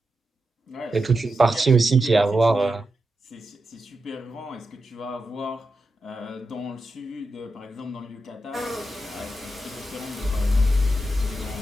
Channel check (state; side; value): normal; both; correlation 0.88